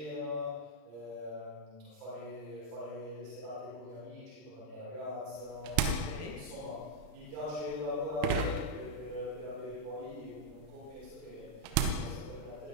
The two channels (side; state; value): left; late; 34 ms